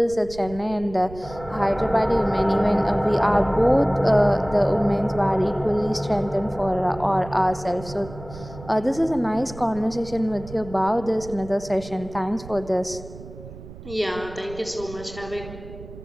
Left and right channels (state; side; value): noise; right; rumble, 15 dB below the sound